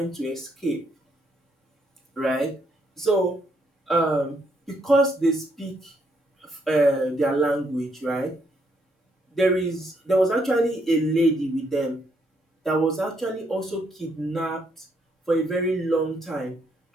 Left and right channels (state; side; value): normal; both; correlation 0.74